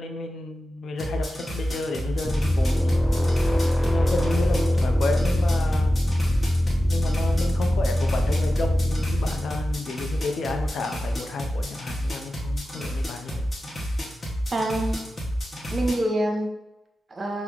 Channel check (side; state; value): both; normal; correlation 0.94